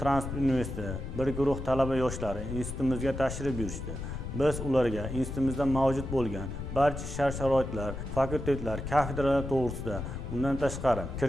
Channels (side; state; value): left; noise; rumble, 7 dB below the sound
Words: transport universiteti bir guruh talaba yoshlari institutimizga tashrif buyurishdi. Biz ularga institutimizda mavjud bo'lgan barcha shart-sharoitlar, fakultetlar, kafedralar to'g'risida, undan tashqari